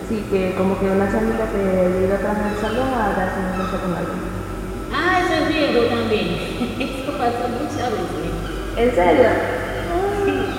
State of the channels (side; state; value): both; identical; correlation 1.00